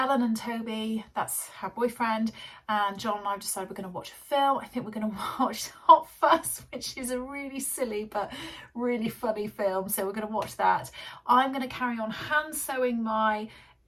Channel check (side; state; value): both; identical; correlation 1.00